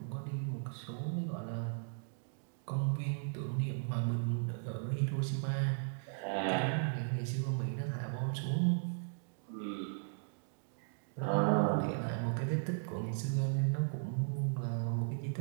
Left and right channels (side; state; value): left; silent; digital silence